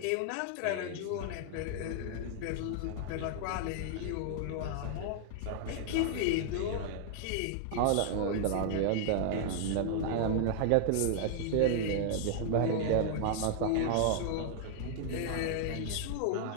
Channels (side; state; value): both; different; correlation -0.01